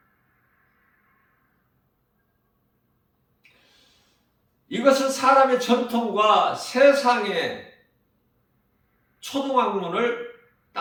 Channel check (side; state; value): both; identical; correlation 1.00